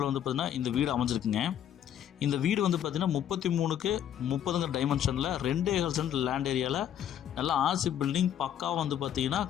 வந்து பார்த்திங்கன்னா இந்த வீடு அமைஞ்சிருக்குங்க. இந்த வீடு வந்து பார்த்திங்கன்னா 33க்கு 30 டைமென்ஷனில் 2.5 சென்ட் லேண்ட் ஏரியாவில் நல்லா ஆர்சி பில்டிங் பக்காவாக வந்து பார்த்திங்கன்னா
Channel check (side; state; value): right; quieter; 10.1 dB